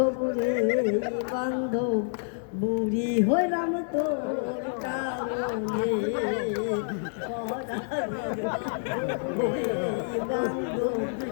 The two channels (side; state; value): right; silent; 59 dB below the other